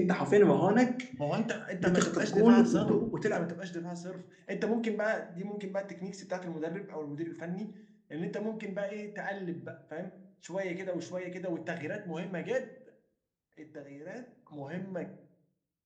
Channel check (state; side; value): identical; both; correlation 1.00